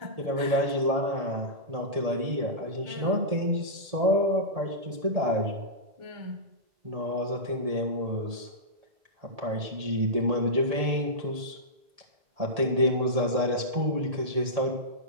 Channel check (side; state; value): left; late; 1.8 ms